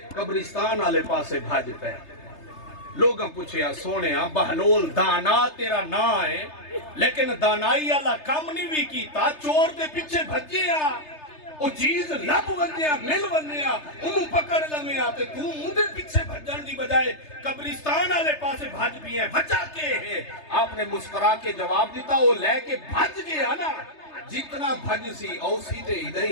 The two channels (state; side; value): late; right; 3.3 ms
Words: قبرستان آلے پاسے بھاج پہ لوگاں پوچھیا سونیا بہلول دانا تیرا نا ہے لیکن دانائی آلہ کم نہیں بھی کیتا چور دے پیچھے بھجیا وہ چیز لب ونیا مل ونیا انہوں پکڑ لمیا تے تو مندے پیچھے بھجن دی بجائے قبرستان آلے پاسے بھج بھی ہیں بچا کے ہے آپ نے مسکرا کے جواب دیتا وہ لے کے بھج گیا نا جتنا بھج سی او سیدھے ادھے